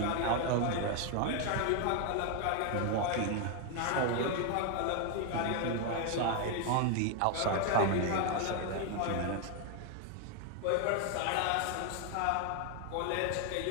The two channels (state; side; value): different; both; correlation 0.01